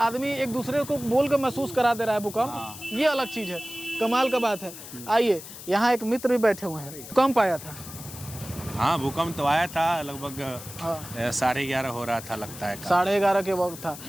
एक दूसरे को बोल कर महसूस करा दे रहा है भूकंप। ये अलग चीज़ है, कमाल का बात है। आइए, यहाँ एक मित्र भी बैठे हुए हैं। भूकंप आया था? हाँ, भूकंप तो आया था। लगभग हाँ। 11:30 हो रहा था, लगता है। 11:30 के वक्त था।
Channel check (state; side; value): noise; left; hiss, 13 dB below the sound